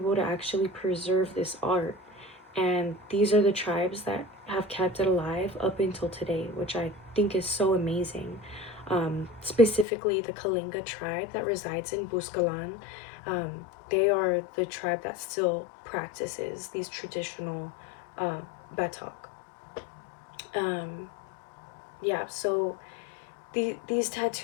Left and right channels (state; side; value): drops out; right; at 9.9 s